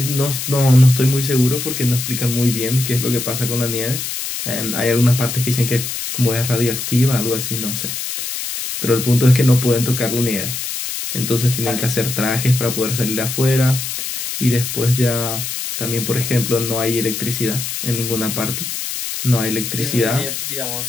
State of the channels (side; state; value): left; noise; hiss, 5 dB below the sound